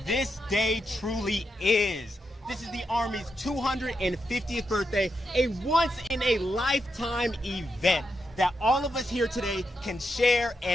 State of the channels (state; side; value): normal; both; correlation 0.84